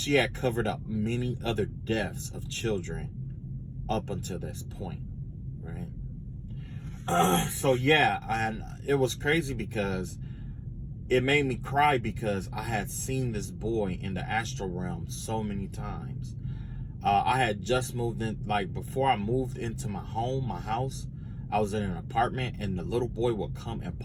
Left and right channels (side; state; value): both; identical; correlation 1.00